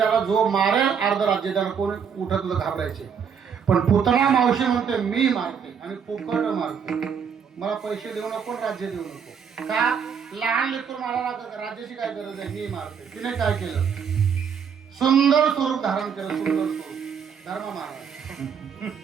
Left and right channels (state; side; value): quieter; left; 7.0 dB